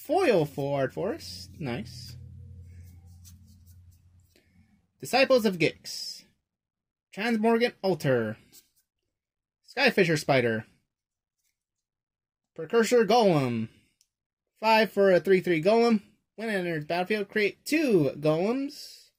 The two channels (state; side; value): identical; both; correlation 1.00